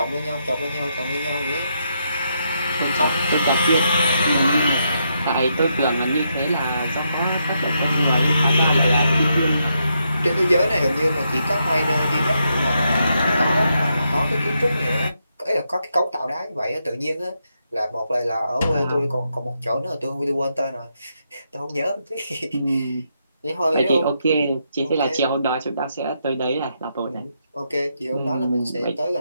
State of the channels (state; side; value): inverted; both; correlation -0.80